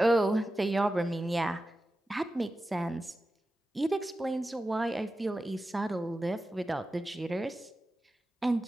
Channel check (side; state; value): both; normal; correlation 0.93